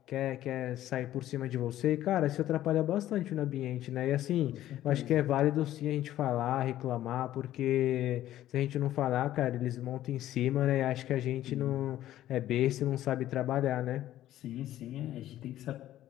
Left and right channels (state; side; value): quieter; right; 13.3 dB